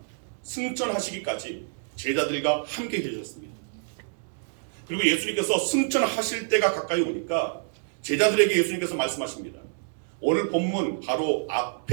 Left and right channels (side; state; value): left; silent; digital silence